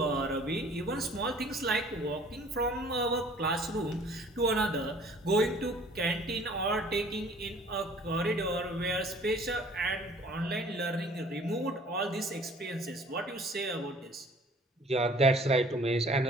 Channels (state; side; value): normal; both; correlation 0.53